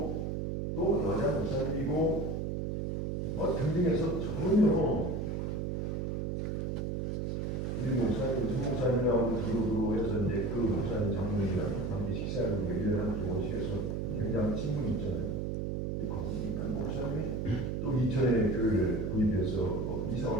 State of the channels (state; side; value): noise; right; hum, 1 dB below the sound